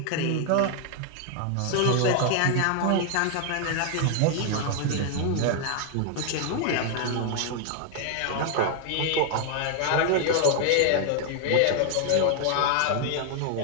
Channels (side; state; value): both; different; correlation 0.00